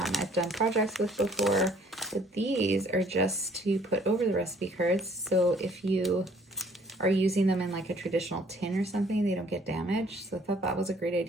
done projects with before, but these are just to put over the recipe cards. So if you are using them in like a traditional tin or something, they don't get damaged. So I thought that was a great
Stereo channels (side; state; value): both; normal; correlation 0.59